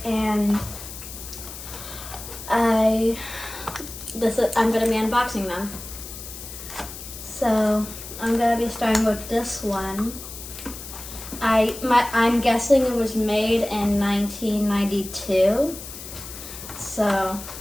and I'm gonna be unboxing them. So I'm gonna be starting with this one. I'm guessing it was made in 1992. So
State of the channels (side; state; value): left; noise; hiss, 12 dB below the sound